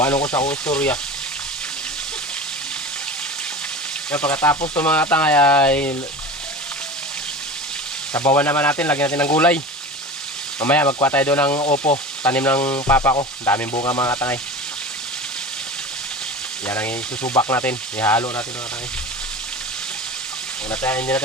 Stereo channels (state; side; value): normal; both; correlation 0.32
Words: ko sa akong istorya. Kaya pagkatapos itong mga tangay ay sabawan naman natin. Lagyan natin ng gulay. Mamaya magkuha tayo doon ng opo, tanim ng papa ko. Daming bunga mga tangay. Yan ang isusubak natin. Ihalo natin mga tangay. Hindi